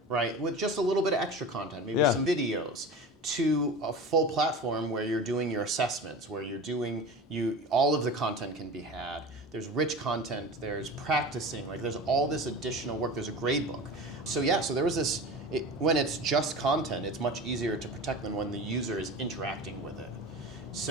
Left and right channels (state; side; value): normal; both; correlation 0.32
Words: right, with just a little bit of extra content, maybe some videos, to a full platform where you're doing your assessments, where you're doing all of the content can be had. There's rich content, there's practicing, like there's all this additional work, there's a grade book. So so there was this, when it's just content, it's much easier to protect than when the user is interacting with it.